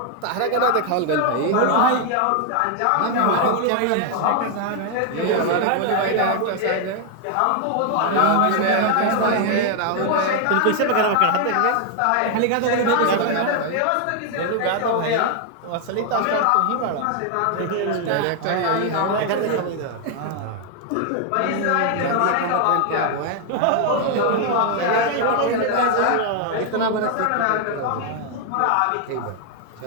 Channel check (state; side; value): different; both; correlation 0.00